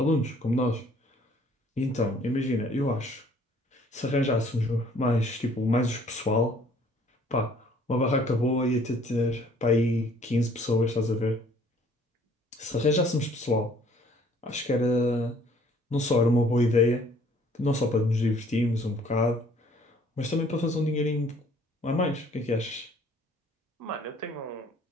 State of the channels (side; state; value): both; normal; correlation 0.59